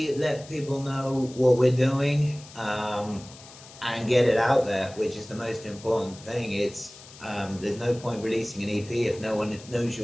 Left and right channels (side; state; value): left; noise; hiss, 19 dB below the sound